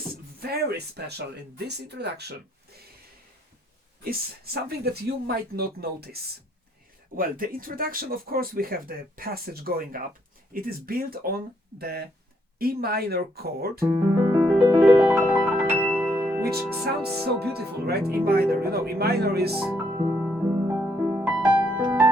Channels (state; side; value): normal; both; correlation 0.72